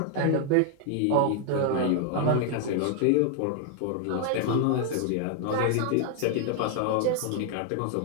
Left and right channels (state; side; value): different; both; correlation 0.00